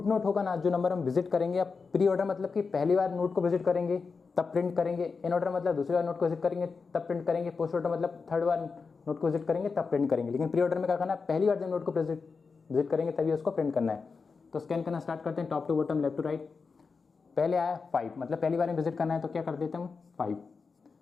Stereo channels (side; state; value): right; quieter; 4.9 dB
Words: नोट होगा ना, जो नंबर हम विजिट करेंगे, आप प्री ऑर्डर मतलब कि पहली बार नोट को विजिट करेंगे तब प्रिंट करेंगे, इन ऑर्डर मतलब दूसरी बार नोट को विजिट करेंगे तब प्रिंट करेंगे, पोस्ट ऑर्डर मतलब थर्ड बार नोट को विजिट करेंगे तब प्रिंट करेंगे। लेकिन प्री ऑर्डर में क्या करना है, पहली बार जब नोट को विजिट करेंगे तभी उसको प्रिंट करना है। तो स्कैन करना स्टार्ट करते हैं, top to bottom, left to right. पहले आया 5, मतलब पहली बार में विजिट करना है तो क्या कर देते हैं हम 5।